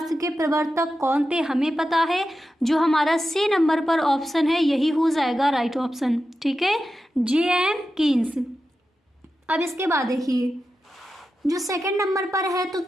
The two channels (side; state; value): both; normal; correlation 0.91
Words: के प्रवर्तक कौन थे हमें पता है, जो हमारा सी नंबर पर ऑप्शन है यही हो जाएगा राइट ऑप्शन। ठीक है, J.M. कीन्स। अब इसके बाद देखिए जो सेकंड नंबर पर है तो